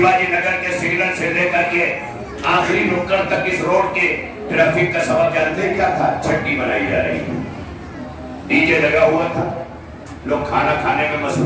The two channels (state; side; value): identical; both; correlation 1.00